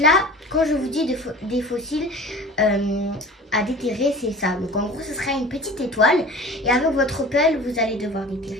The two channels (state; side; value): normal; both; correlation 0.40